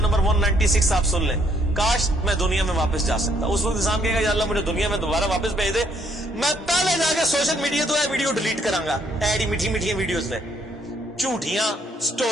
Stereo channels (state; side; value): normal; both; correlation 0.68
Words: 196 آپ سن لیں, کاش میں دنیا میں واپس جا سکتا. اس وقت انسان کہے گا یا اللہ مجھے دنیا میں دوبارہ واپس بھیج دے, میں پہلے جا کے سوشل میڈیا تو ویڈیو ڈیلیٹ کراں گا. ایڈی میٹھی میٹھی ویڈیوز نے, جھوٹیاں